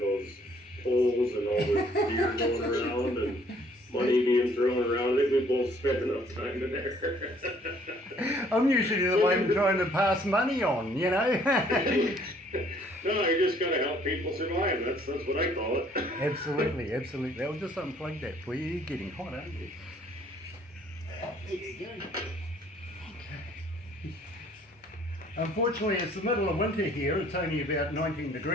those poles and all the beer going around and money being thrown around. I think we both spent enough time in there. I'm usually the one trying to pass money on, you know. No, you just gotta help people survive. That's what I call it. Absolutely. I'll just unplug that for you. You're getting hot, aren't you? There you go. Okay. Unfortunately, it's the middle of winter here. It's only about 19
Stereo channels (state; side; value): normal; both; correlation 0.61